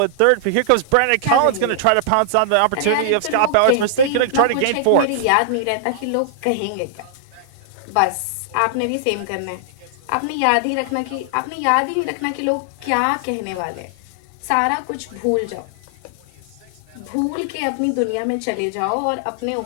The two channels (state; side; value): different; both; correlation -0.01